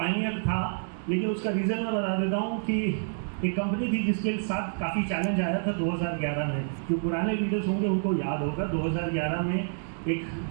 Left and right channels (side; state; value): left; silent; digital silence